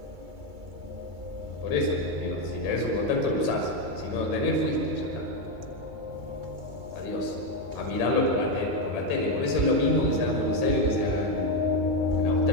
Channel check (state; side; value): late; left; 2.3 ms